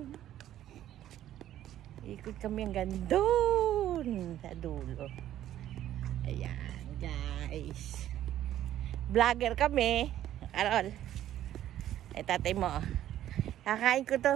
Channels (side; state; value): left; quieter; 12.2 dB